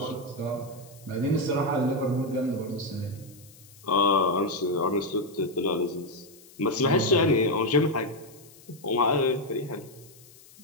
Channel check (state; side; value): noise; left; hiss, 23 dB below the sound